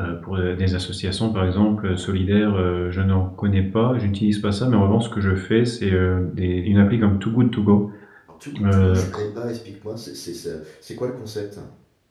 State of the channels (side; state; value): both; identical; correlation 1.00